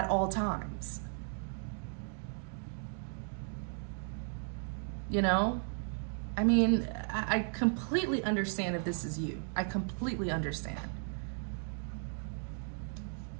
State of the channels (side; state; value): left; silent; 54 dB below the other